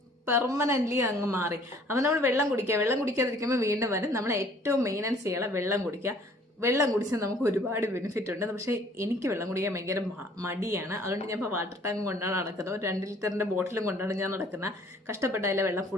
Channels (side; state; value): both; normal; correlation 0.56